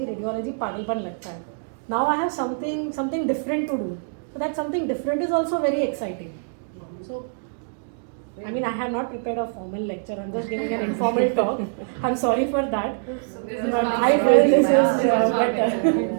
पागलपन लगता है. Now I have something different to do. So that something different is also very exciting. So I mean, I have not prepared a formal lecture. I'm just giving an informal talk. I'm sorry for that. But I feel this is better.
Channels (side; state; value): left; silent; digital silence